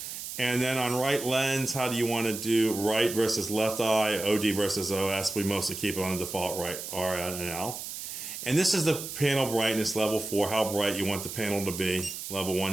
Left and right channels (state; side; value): noise; right; hiss, 8 dB below the sound